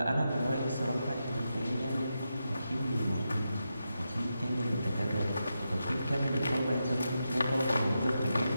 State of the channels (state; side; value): inverted; both; correlation -0.87